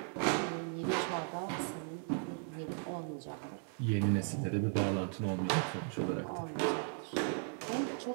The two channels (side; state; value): left; silent; 53 dB below the other